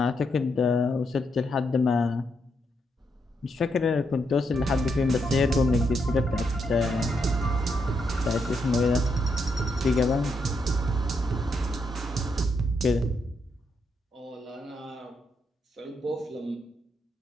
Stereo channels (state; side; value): normal; both; correlation 0.79